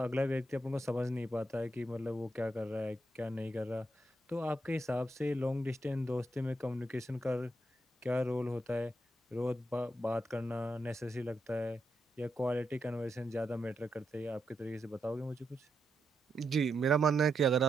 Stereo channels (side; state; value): both; normal; correlation 0.83